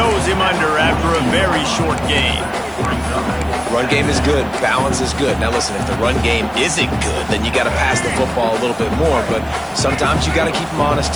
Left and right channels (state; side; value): noise; left; hiss, 27 dB below the sound